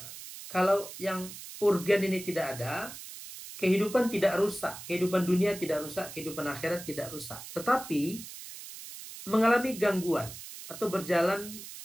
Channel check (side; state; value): right; noise; hiss, 12 dB below the sound